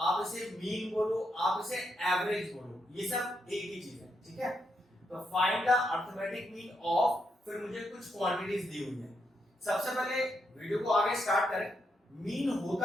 आप इसे मीन बोलो, आप इसे एवरेज बोलो, ये सब एक ही चीज है। ठीक है, तो find the arithmetic mean of, फिर मुझे कुछ क्वांटिटीज दी हुई है। सबसे पहले वीडियो को आगे स्टार्ट करें। मीन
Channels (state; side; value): normal; both; correlation 0.81